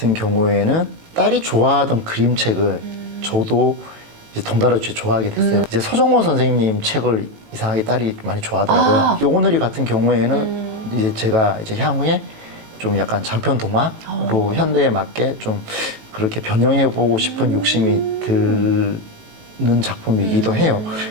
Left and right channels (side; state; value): left; late; 18 ms